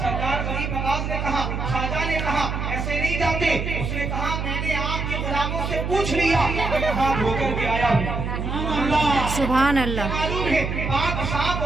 गरीब नवाज ने कहा, ख्वाजा ने कहा, ऐसे नहीं जाते। उसने कहा, मैंने आपके गुलामों से पूछ लिया, मैं हाथ धोकर के आया हूँ। सुभान अल्लाह। मालूम है, पाक साफ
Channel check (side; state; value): right; noise; hum, 3 dB below the sound